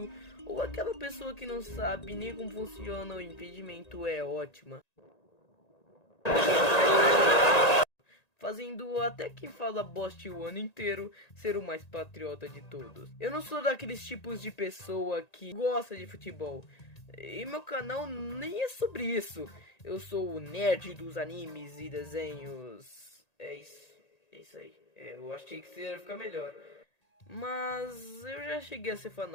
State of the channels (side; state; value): right; late; 1.9 ms